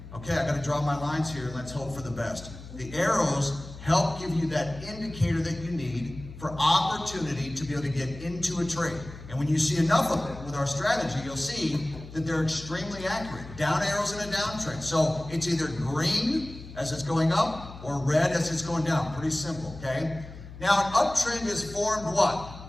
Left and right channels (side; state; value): left; noise; hum, 14 dB below the sound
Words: okay, I gotta draw my lines here and let's hope for the best. The arrows help give you that indicator that you need for opportunity to be able to get into a trade. And when you see enough of it with our strategy, you'll see that they're extremely accurate. Down arrows in a downtrend. So it's either green as it's going up or red as it's going down. Pretty simple, okay? Now an uptrend is formed what?